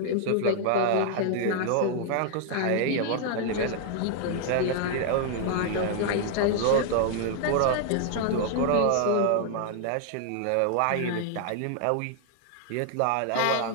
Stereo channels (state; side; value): different; both; correlation 0.00